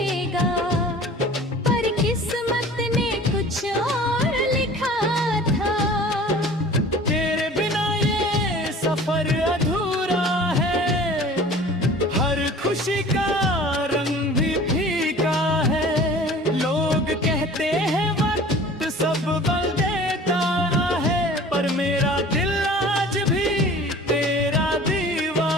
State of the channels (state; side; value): normal; both; correlation 0.44